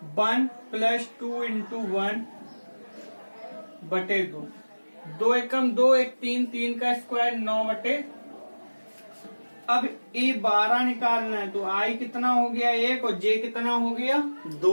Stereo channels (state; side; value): inverted; both; correlation -1.00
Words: 1 + 2 × 1 बटे 2, 2 एकम 2, 1 3, 3 का स्क्वायर 9 बटे। अब A12 निकालना है तो I कितना हो गया 1 और J कितना हो गया